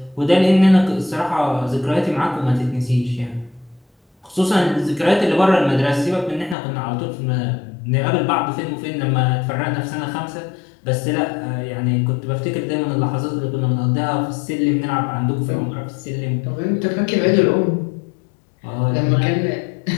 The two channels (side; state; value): right; drops out; at 6.6 s